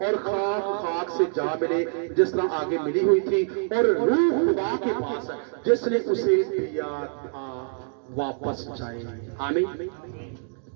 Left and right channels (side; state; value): left; silent; digital silence